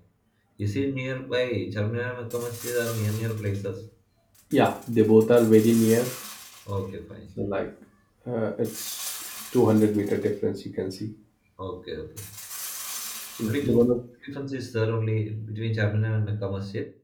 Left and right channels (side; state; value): both; identical; correlation 1.00